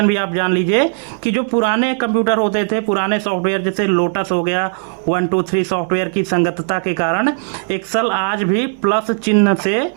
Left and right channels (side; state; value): left; silent; digital silence